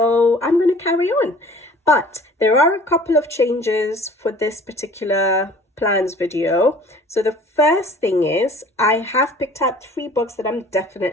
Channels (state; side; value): normal; both; correlation 0.49